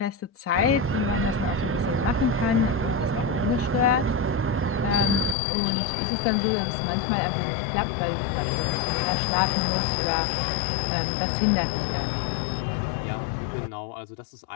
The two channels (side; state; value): right; drops out; at 5.4 s